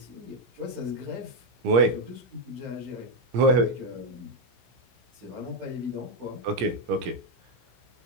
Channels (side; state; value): left; late; 17 ms